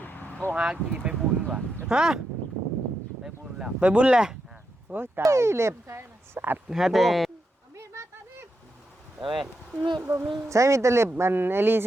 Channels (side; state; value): both; normal; correlation 0.85